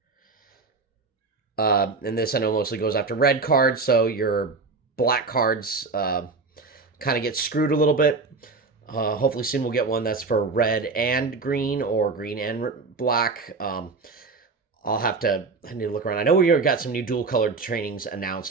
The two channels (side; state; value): left; quieter; 4.2 dB